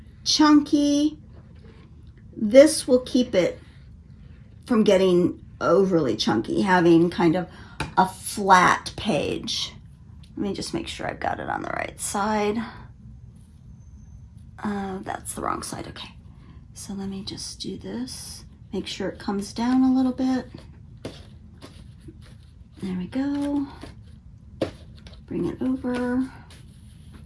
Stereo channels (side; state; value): both; identical; correlation 1.00